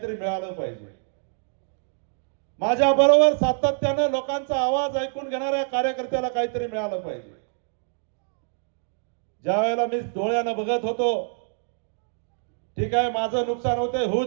मिळालं पाहिजे. माझ्या बरोबर सातत्यानं लोकांचा आवाज ऐकून घेणाऱ्या कार्यकर्त्याला काहीतरी मिळालं पाहिजे. ज्या वेळेला मी डोळ्यानं बघत होतो, ठीक आहे माझं नुकसान होते होऊ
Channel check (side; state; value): left; silent; digital silence